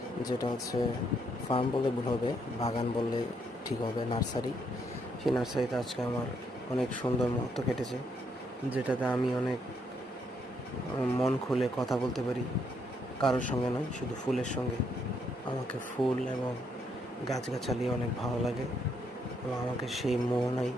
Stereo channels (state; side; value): normal; both; correlation 0.74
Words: যেটা হচ্ছে ফার্ম বললে ভুল হবে, বাগান বললে ঠিক হবে, নার্সারি। সেই নার্সারিতে আজকে আমার অনেক সুন্দর মুহূর্ত কেটেছে, যেটাতে আমি অনেক মন খুলে কথা বলতে পারি, কারোর সঙ্গে নয়, শুধু ফুলের সঙ্গে। আমাকে ফুল এবং গাছগাছালি অনেক ভালো লাগে এবং আমাকে সেই মোহনায়